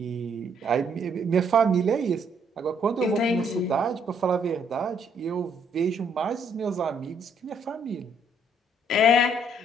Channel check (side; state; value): both; normal; correlation 0.68